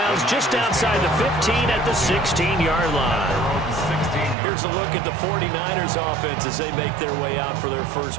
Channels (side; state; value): left; drops out; at 4.4 s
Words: just outside the 15 at the 16-yard line. Here's a look at the 49ers offense as they make their way out for their first